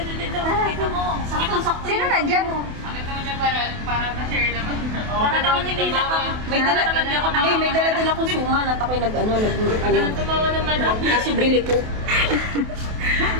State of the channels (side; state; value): left; late; 28 ms